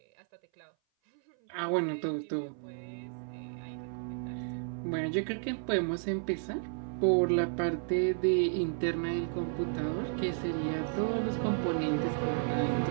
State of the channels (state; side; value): silent; left; 56 dB below the other